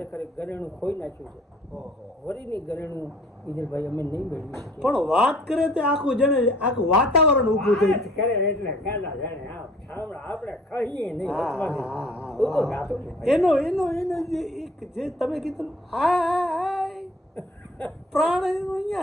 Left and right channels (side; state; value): both; normal; correlation 0.54